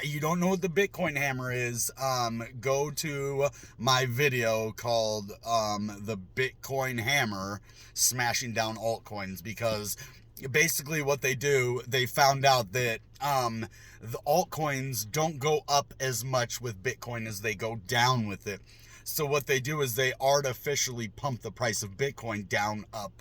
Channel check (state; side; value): identical; both; correlation 1.00